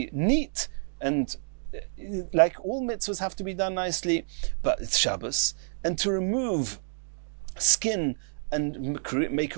neat, and like all mitzvahs have to be done nicely, but it's Shabbos, and to remove skin and make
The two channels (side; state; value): left; silent; digital silence